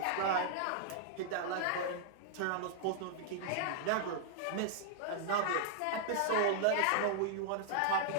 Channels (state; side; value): different; both; correlation -0.01